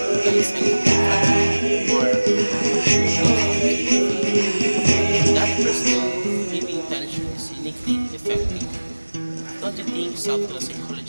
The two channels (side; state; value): both; inverted; correlation -1.00